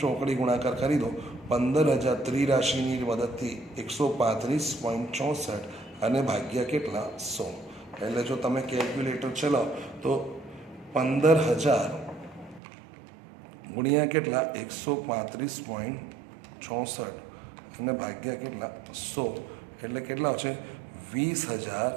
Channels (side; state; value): left; drops out; at 12.6 s